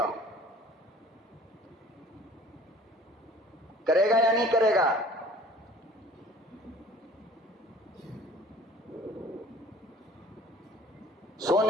ہوں۔ کرے گا یا نہیں کرے گا؟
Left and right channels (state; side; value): normal; both; correlation 0.50